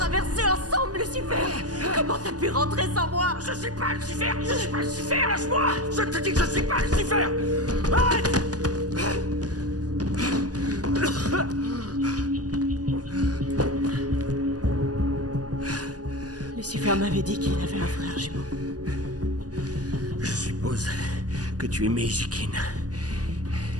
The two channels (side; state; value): left; late; 0.68 ms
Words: ensemble, Lucifer! Comment t'as pu rentrer sans moi? Je suis pas Lucifer! Je suis pas Lucifer! Lâche-moi! Je te dis que je suis pas Lucifer! Arrête! Lucifer m'avait dit qu'il avait un frère jumeau. Je suppose que tu es Meisikin.